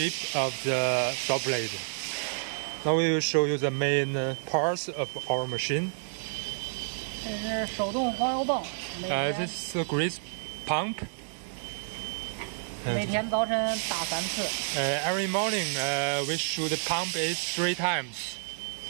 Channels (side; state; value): left; silent; 58 dB below the other